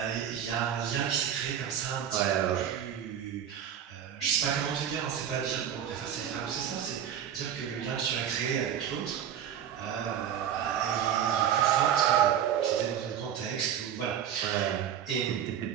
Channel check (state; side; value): quieter; left; 9.4 dB